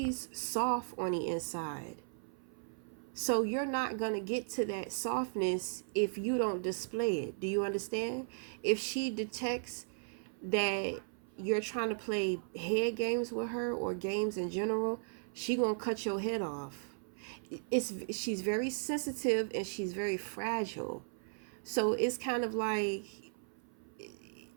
soft on the inside. So you're not going to get to that softness if you don't display it. Do you understand? If she detects that you're trying to play head games with her or games in general, she going to cut your head off. She's very sensitive and she's very fragile. So it's kind of like,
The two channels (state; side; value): silent; left; 53 dB below the other